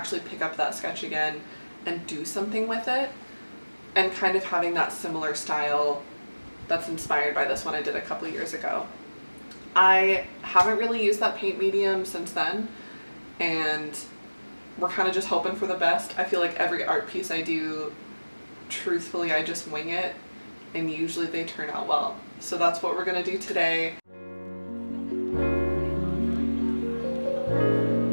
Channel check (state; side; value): inverted; both; correlation -1.00